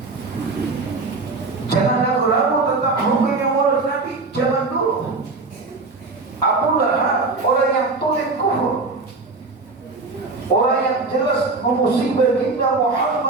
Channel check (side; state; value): left; quieter; 3.7 dB